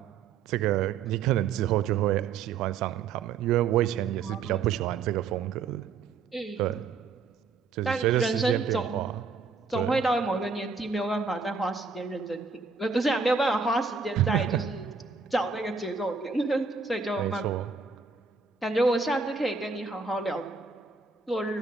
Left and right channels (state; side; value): quieter; left; 5.1 dB